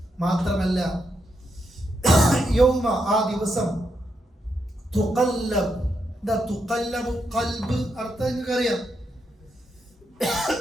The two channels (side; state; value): both; normal; correlation 0.81